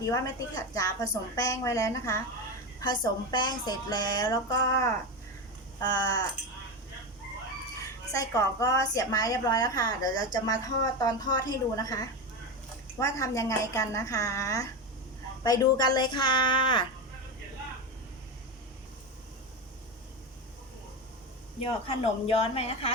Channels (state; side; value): normal; both; correlation 0.17